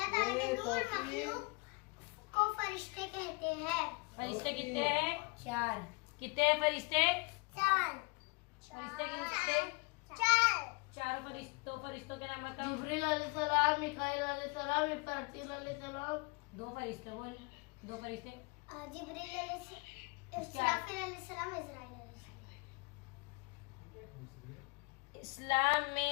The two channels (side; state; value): right; quieter; 29.1 dB